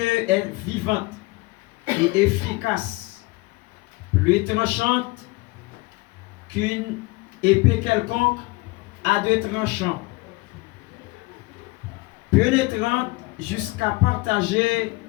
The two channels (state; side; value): quieter; right; 23.3 dB